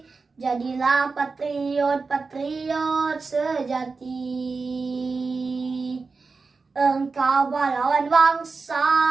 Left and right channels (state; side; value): quieter; left; 4.3 dB